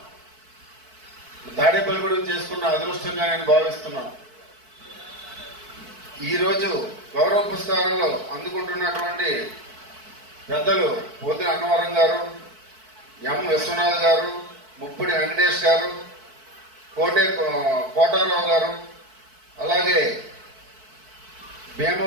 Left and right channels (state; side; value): late; left; 4.6 ms